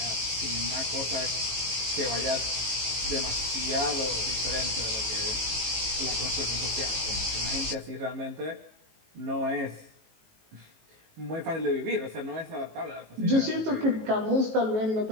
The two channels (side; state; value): left; late; 18 ms